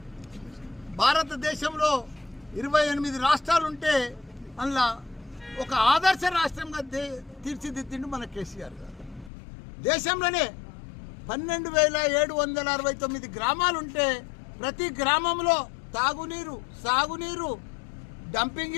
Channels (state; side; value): drops out; right; at 9.3 s